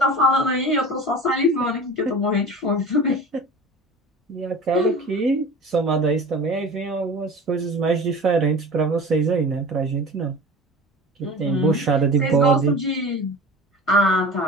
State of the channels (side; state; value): both; normal; correlation 0.36